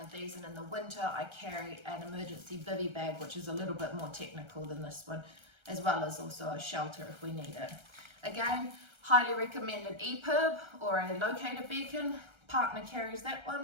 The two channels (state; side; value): late; left; 1.3 ms